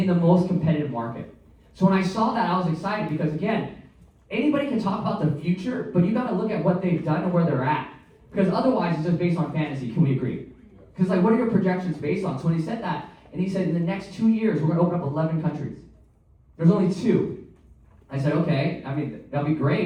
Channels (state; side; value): identical; both; correlation 1.00